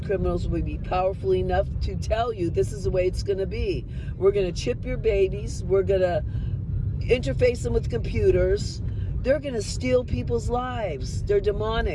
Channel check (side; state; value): both; identical; correlation 1.00